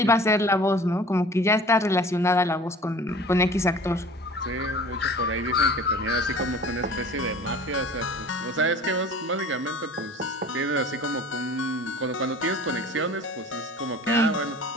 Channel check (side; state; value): both; normal; correlation 0.44